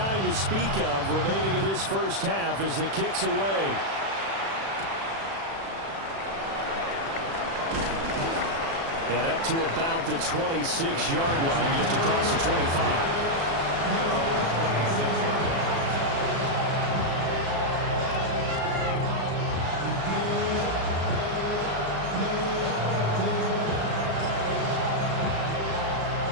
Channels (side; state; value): left; late; 36 ms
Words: to speak of remaining in this first half as the kick's away. And up to about the 26-yard line, just across the 25.